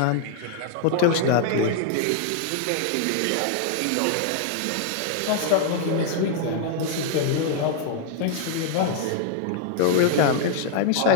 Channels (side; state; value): both; different; correlation -0.01